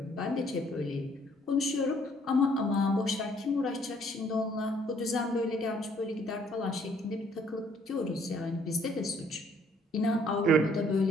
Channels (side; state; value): both; normal; correlation 0.63